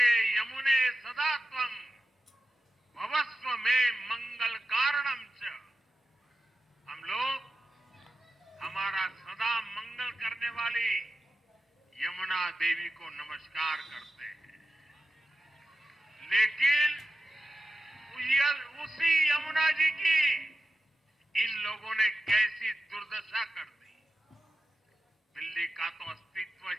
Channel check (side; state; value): both; normal; correlation 0.90